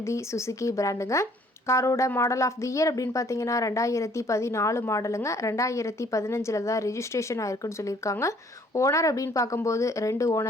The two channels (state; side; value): normal; both; correlation 0.60